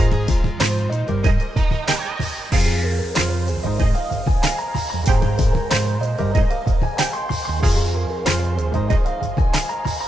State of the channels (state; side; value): normal; both; correlation 0.87